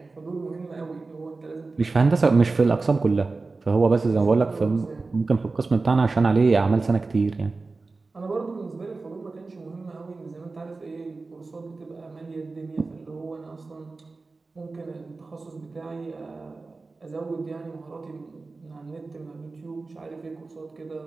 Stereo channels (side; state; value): left; quieter; 3.8 dB